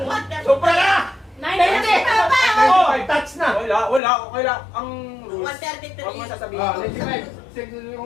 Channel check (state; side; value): drops out; right; at 4.0 s